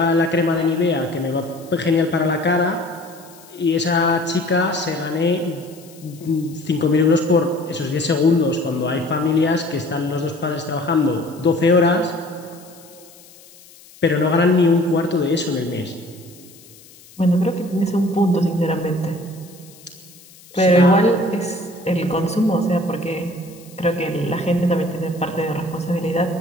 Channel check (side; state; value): left; noise; hiss, 23 dB below the sound